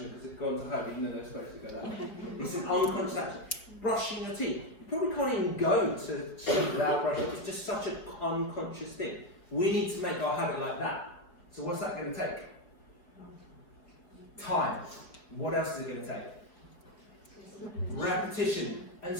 because it's gone to home even though they're supposed to go that way? It's an unconscious action. Brushing your teeth. You probably can't even go to sleep without brushing. It's just such an unconscious thing. We need to make our habit like that. So what's that going to take? Time. What else is it going to take? Repetition. And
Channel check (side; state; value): right; late; 4.6 ms